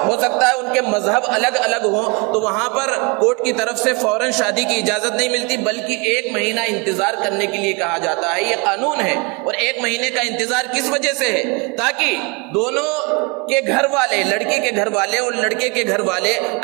سکتا ہے ان کے مذہب الگ الگ ہوں، تو وہاں پر کورٹ کی طرف سے فوراً شادی کی اجازت نہیں ملتی، بلکہ 1 مہینہ انتظار کرنے کے لیے کہا جاتا ہے۔ یہ قانون ہے، اور 1 مہینے کا انتظار کس وجہ سے ہے؟ تاکہ دونوں کے گھر والے، لڑکی کے گھر والے اور لڑکے کے گھر والے،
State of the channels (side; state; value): left; quieter; 30.3 dB